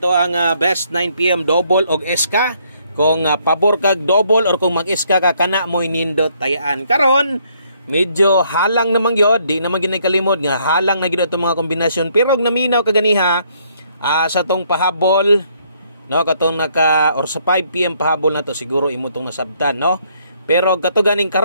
ang best 9 PM double og SK. Kung pabor kag double or kung mag-SK ka kana mo nindot tayaan. Karon, medyo halang naman gyud, di naman ginay kalimod nga halang na gyud ato mga kombinasyon pero og naminaw kaganiha sa tong pahabol. No, katong or sa 5 PM pahabol na to siguro imo tong nasabtan, no? Pero kato ganing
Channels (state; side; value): inverted; both; correlation -0.68